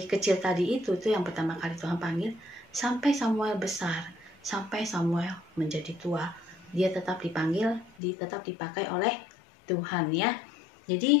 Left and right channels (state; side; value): drops out; right; at 7.9 s